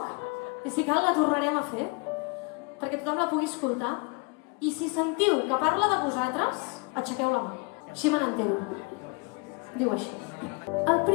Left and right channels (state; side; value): quieter; right; 30.4 dB